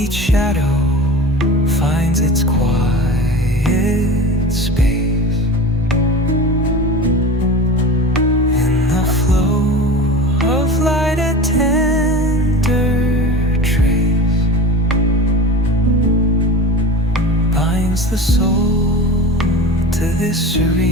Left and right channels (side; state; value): both; normal; correlation 0.33